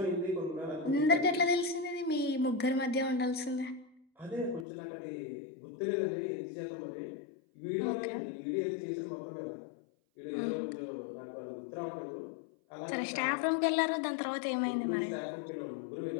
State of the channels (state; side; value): drops out; right; at 4.7 s